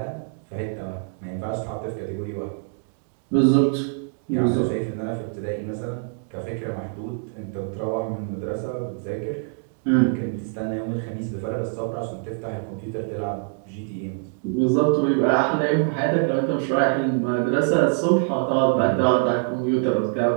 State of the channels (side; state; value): left; silent; 62 dB below the other